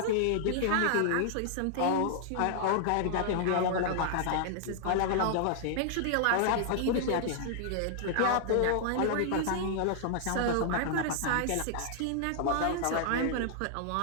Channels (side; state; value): both; different; correlation -0.01